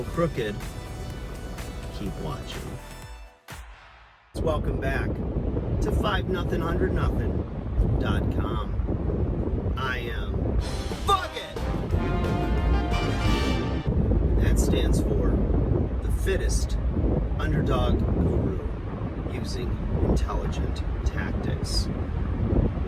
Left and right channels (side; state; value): both; identical; correlation 1.00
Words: crooked, keep watching. Welcome back to 5nothing100nothing.com. I am Fuck It! That stands for the fittest underdog guru using intelligent tactics.